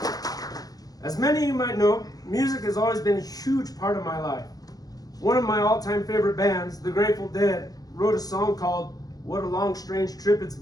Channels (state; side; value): late; right; 0.18 ms